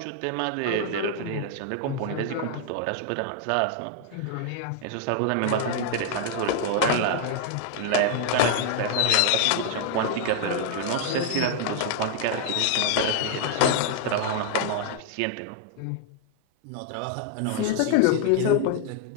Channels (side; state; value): both; different; correlation 0.00